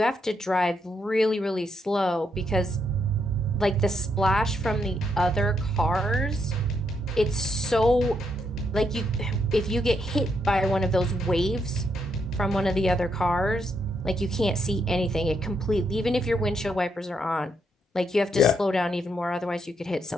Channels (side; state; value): both; normal; correlation 0.78